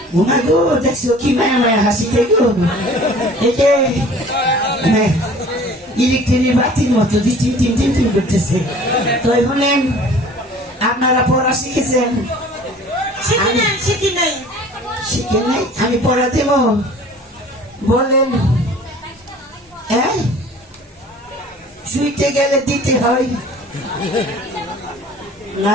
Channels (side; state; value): both; normal; correlation 0.47